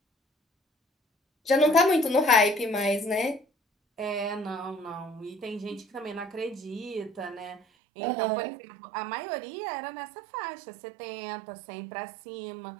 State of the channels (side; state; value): left; drops out; at 7.6 s